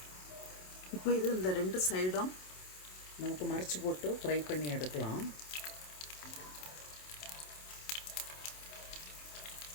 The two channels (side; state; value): right; late; 27 ms